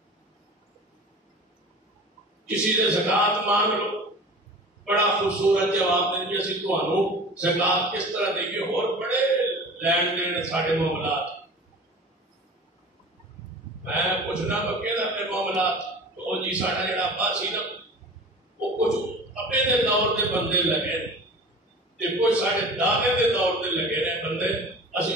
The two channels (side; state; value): both; normal; correlation 0.39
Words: کسی سے زکوٰۃ مانگ لو، بڑا خوبصورت جواب دیں گے اسی تمہوں زکوٰۃ کس طرح دیں گے، اور بڑے لین دین سارے معاملات، میں پوچھنا پکے نا اپنے معاملات تو جی ساڈا جڑا ابا سی نا وہ کچھ ابے دے دور دے بندے لگے تے کچھ ساڈے دادے دے دور دے لگے نے بندے، اسی